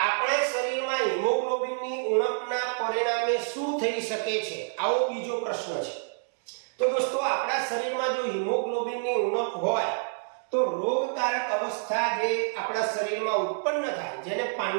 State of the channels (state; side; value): silent; left; digital silence